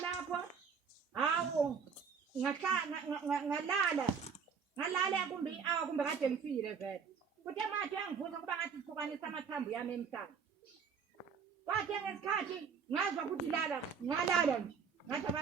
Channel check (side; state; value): left; quieter; 6.3 dB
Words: hawo ngalala kumbe i-hour kumbe kade ngifile vele kuthe manje angivuza kuba ngathi sihlukanisa amathambo yami emhlanje ngenkathi ngazwa ukuthi lala ngalala nje ngathi